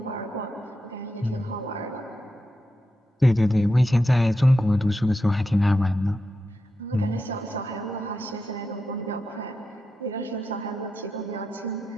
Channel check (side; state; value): both; normal; correlation 0.88